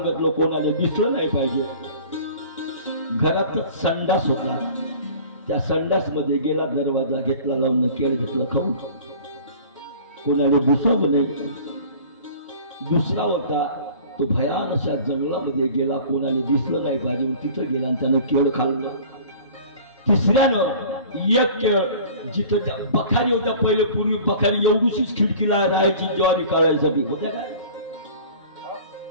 कोणाला दिसलं नाही पाहिजे. घरातच संडास होता. त्या संडास मध्ये गेला, दरवाजा घेतला लावून, केळ घेतलं खाऊन, कोणाला दिसावं नाही. दुसरा होता तो भयान अशा जंगलामध्ये गेला, कोणाला दिसलं नाही पाहिजे, तिथं गेला आणि त्यानं केळ खाल्लं. तिसऱ्यानं एक केळ, जिथं बखारी होत्या, पहिले पूर्वी बखारी एवढीशीच खिडकीला राहायची ज्वारी काढायसाठी, होत्या काय?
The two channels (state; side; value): inverted; both; correlation -0.44